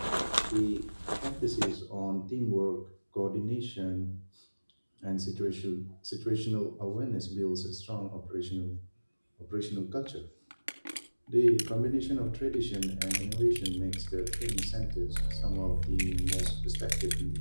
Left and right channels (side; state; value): both; inverted; correlation -1.00